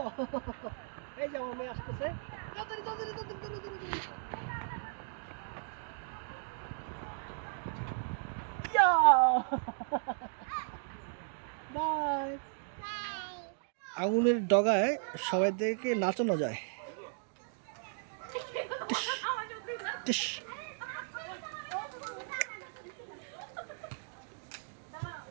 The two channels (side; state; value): left; silent; digital silence